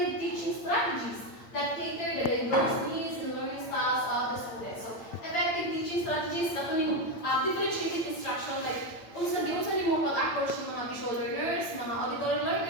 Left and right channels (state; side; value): late; right; 8.8 ms